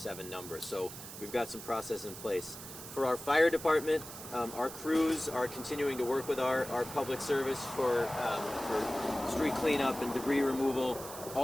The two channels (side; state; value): right; noise; hiss, 12 dB below the sound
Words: number. So we've got some process in place. For our fire department, our crews are continuing to work with our public service for street cleanup and debris removal.